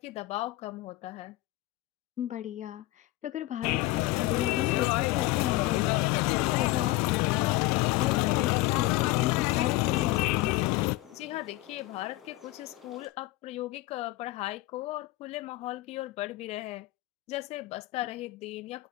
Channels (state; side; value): quieter; right; 18.5 dB